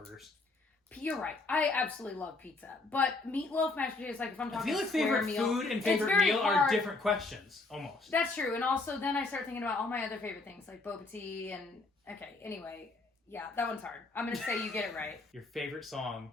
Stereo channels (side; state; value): right; quieter; 3.4 dB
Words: You're right. I absolutely love pizza. But meatloaf, mashed potatoes, like if I'm talking I feel like favorite meal, food and favorite meal are different questions, almost. That's true. And also then I start thinking about all my other favorite things, like boba tea and... Okay, anyway. Yeah, that one's hard. I'm going to say you get it right. Your favorite song